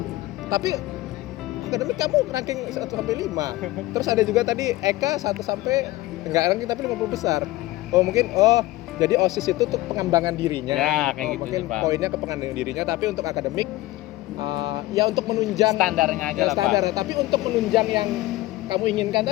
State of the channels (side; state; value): right; quieter; 17.8 dB